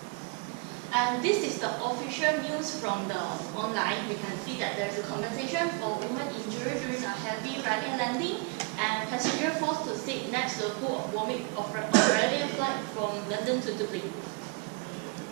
And this is the official news from the online. We can see that there's a compensation for woman injured during a heavy Ryanair landing and passenger forced to sit next to a pool of vomit of Ryanair flight from London to Dublin.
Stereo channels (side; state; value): left; quieter; 30.3 dB